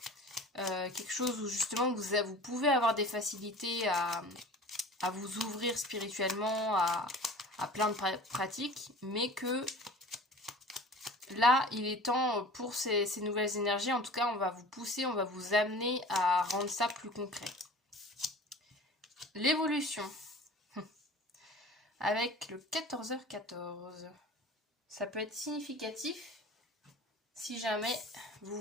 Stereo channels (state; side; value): normal; both; correlation 0.41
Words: Quelque chose où justement vous pouvez avoir des facilités à vous ouvrir spirituellement, à plein de pratiques. Mais que là, il est temps pour ces nouvelles énergies. En tout cas, on va vous pousser, on va vous amener à rendre ça plus concret. L'évolution avec le 14h14. Ça peut être significatif si jamais vous